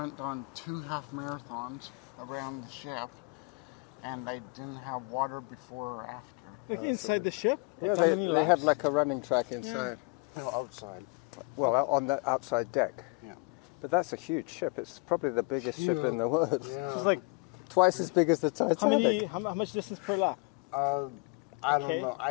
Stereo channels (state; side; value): quieter; right; 31.7 dB